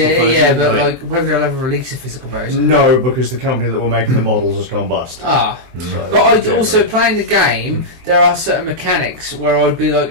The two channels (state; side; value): late; left; 23 ms